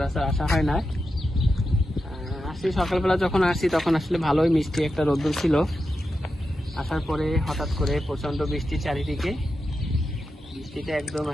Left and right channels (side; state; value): both; normal; correlation 0.89